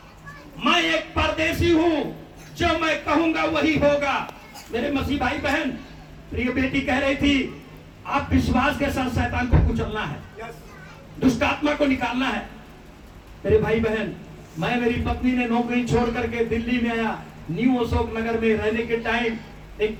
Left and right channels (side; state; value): both; identical; correlation 1.00